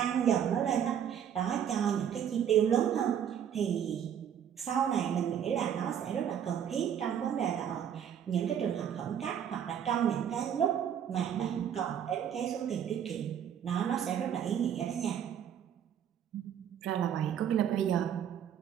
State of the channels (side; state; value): left; quieter; 9.0 dB